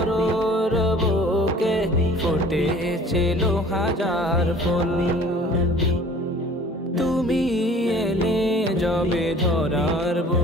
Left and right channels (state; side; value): normal; both; correlation 0.49